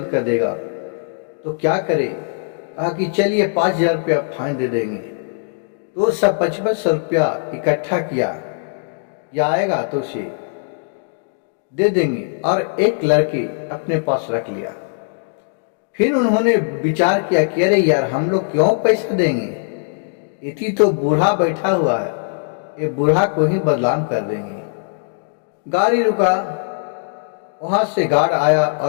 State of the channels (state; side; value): silent; right; digital silence